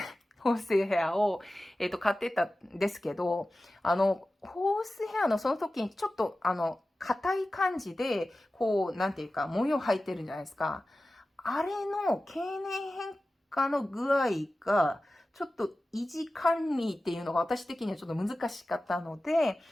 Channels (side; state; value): both; normal; correlation 0.95